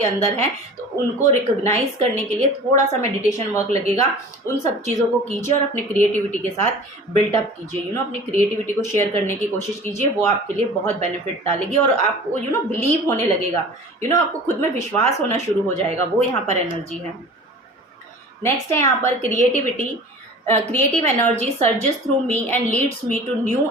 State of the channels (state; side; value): normal; both; correlation 0.41